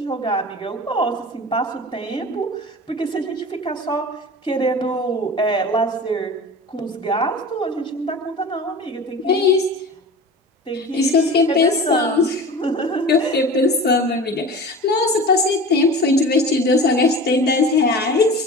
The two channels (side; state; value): both; normal; correlation 0.35